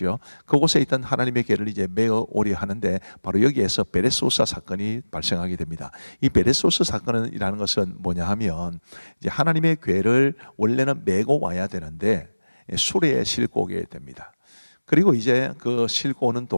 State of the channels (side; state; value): both; inverted; correlation -1.00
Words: 그곳에 있던 하나님의 교회를 이제 메어 오려 하는데 바로 여기에서 베레소사 사건이 발생하게 됩니다. 이 베레소사 사건이라는 것은 뭐냐 하면 이제 하나님의 교회를 원래는 메고 와야 되는데 수레에 싣고 오게 됩니다. 그리고 이제 그 싣고 오는